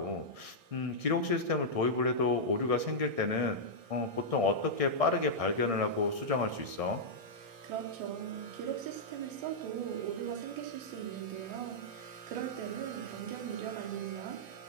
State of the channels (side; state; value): left; late; 1.6 ms